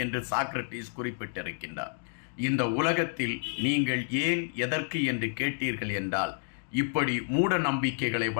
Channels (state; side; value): silent; right; digital silence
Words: என்று சாக்ரட்டிஸ் குறிப்பிட்டிருக்கின்றார். இந்த உலகத்தில் நீங்கள் ஏன், எதற்கு என்று கேட்டீர்கள் என்றால் இப்படி மூட நம்பிக்கைகளை